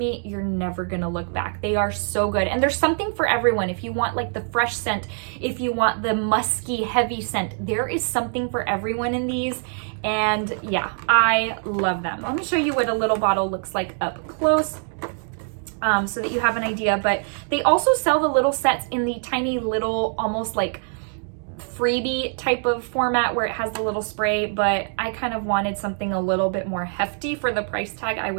you're never gonna look back. They are so good, and there's something for everyone. If you want like the fresh scent, if you want the musky, heavy scent, there is something for everyone in these. And yeah, I love them. Let me show you what a little bottle looks like up close. So that you have an idea, but they also sell the little sets in the tiny little, almost like freebie type of format where it has the little spray, but I kind of wanted something a little bit more hefty for the price tag I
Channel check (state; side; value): silent; left; 56 dB below the other